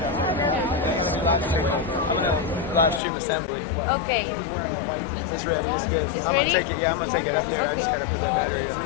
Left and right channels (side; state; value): right; drops out; at 3.0 s